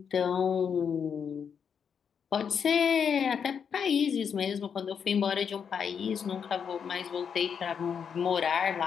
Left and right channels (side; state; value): right; quieter; 7.1 dB